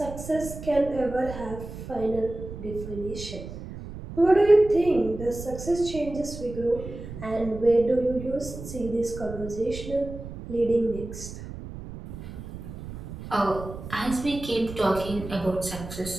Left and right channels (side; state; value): right; noise; rumble, 11 dB below the sound